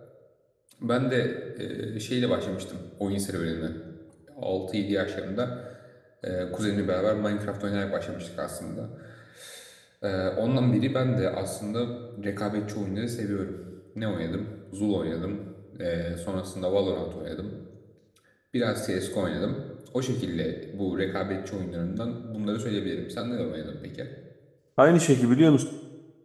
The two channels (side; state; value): both; identical; correlation 1.00